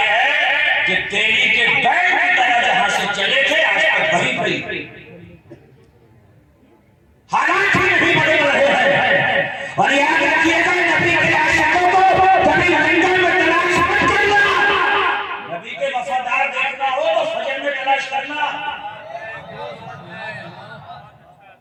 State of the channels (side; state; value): both; identical; correlation 1.00